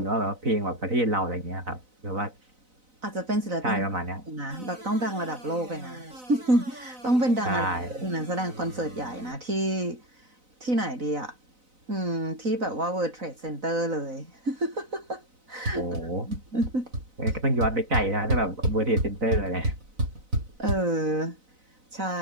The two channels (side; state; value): left; late; 4.0 ms